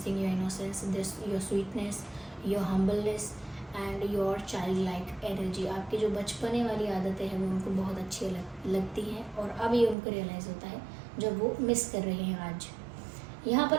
your innocence, your sweetness, your humbleness and your child like energy. आपकी जो बचपने वाली आदतें हैं वो उनको बहुत अच्छी लगती हैं, और अब ये उनको रियलाइज़ होता है जब वो मिस कर रहे हैं आज। यहाँ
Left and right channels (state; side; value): drops out; left; at 10.0 s